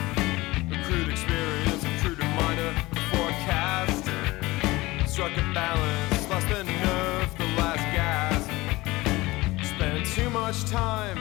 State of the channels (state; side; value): quieter; right; 20.3 dB